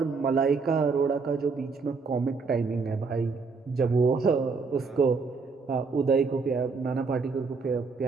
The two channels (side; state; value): left; quieter; 4.6 dB